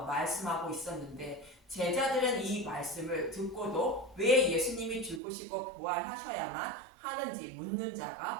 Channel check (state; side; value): drops out; left; at 5.2 s